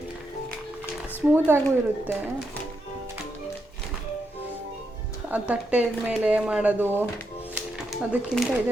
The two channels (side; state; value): both; normal; correlation 0.82